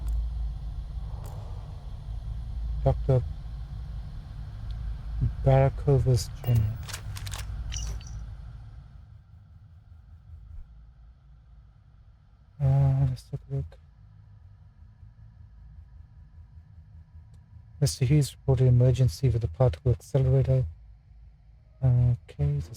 Dr. Barakovas Jr. Let's take a look. Mr. Hughes reported emergency with the particle accelerator. Okay,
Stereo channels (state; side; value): identical; both; correlation 1.00